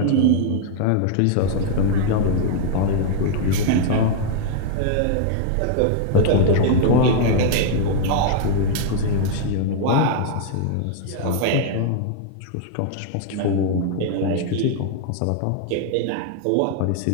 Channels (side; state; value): both; different; correlation 0.00